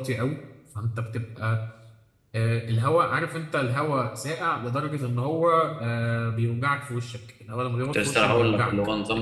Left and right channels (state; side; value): identical; both; correlation 1.00